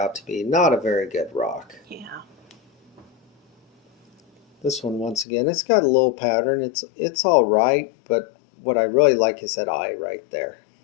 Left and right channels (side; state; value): right; drops out; at 5.2 s